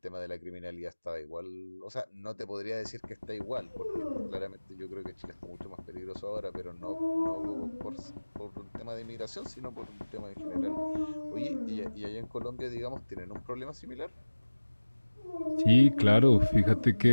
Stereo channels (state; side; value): inverted; both; correlation -1.00